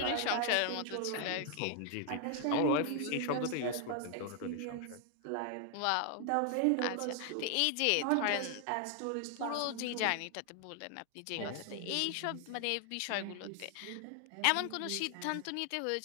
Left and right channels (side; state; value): both; different; correlation 0.00